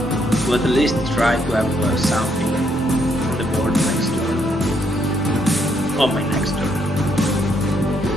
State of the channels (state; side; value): normal; both; correlation 0.73